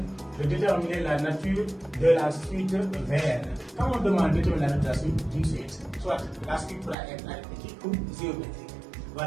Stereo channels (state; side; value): drops out; left; at 7.0 s